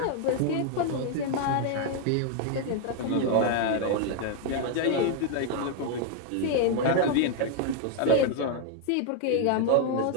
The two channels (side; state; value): both; different; correlation 0.00